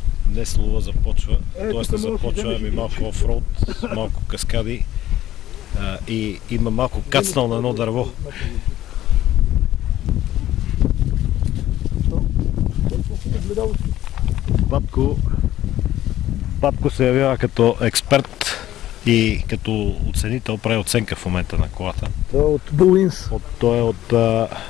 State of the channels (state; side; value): quieter; right; 13.6 dB